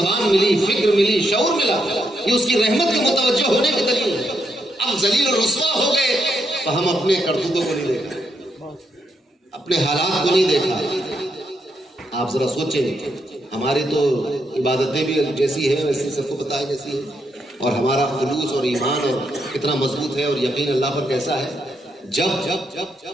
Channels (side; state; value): both; normal; correlation 0.79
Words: ملی، فکر ملی، شعور ملا، یہ اس کی رحمت کے متوجہ ہونے کی دلیل ہے۔ اب ذلیل و رسوا ہو گئے تو ہم اپنے کرتوتوں کو نہیں دیکھا، اپنے حالات کو نہیں دیکھا۔ آپ ذرا سوچیں، ہماری تو عبادتیں بھی جیسی ہیں ویسے سب کو پتہ ہے کیسی ہے، اور ہمارا خلوص اور ایمان اور کتنا مضبوط ہے اور یقین اللہ پر کیسا ہے۔ جب